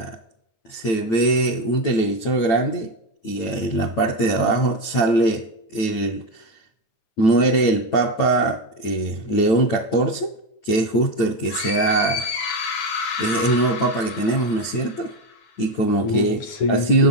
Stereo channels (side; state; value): right; late; 8.9 ms